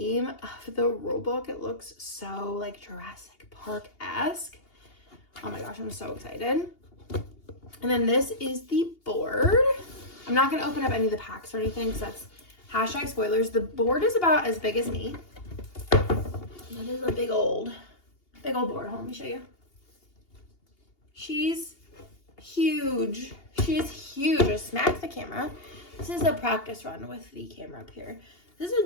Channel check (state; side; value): late; right; 2.8 ms